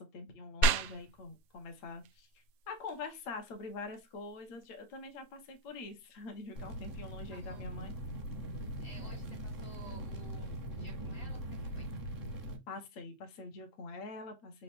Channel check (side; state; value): right; late; 7.7 ms